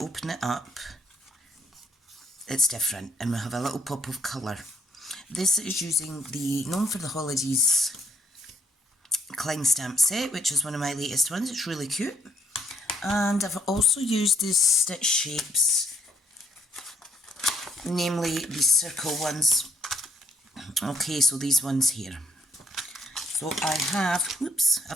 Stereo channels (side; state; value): both; normal; correlation 0.68